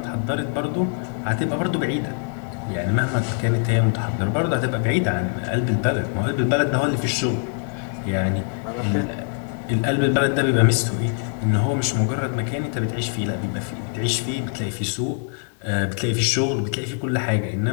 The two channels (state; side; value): silent; right; 55 dB below the other